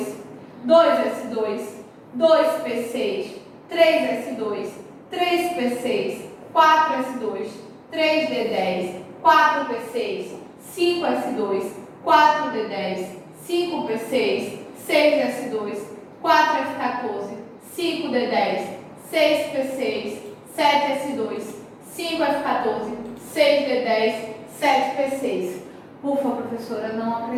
2S2, 2P6, 3S2, 3P6, 4S2, 3D10, 4P6, 5S2, 4D10, 5P6, 6S2, 4F14, 5D10, 6P6, 7S2, 5F14, 6D10, 7P6. Ufa, professora, não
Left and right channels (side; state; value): both; identical; correlation 1.00